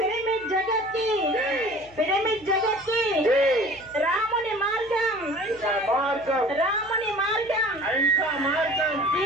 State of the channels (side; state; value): left; noise; hum, 25 dB below the sound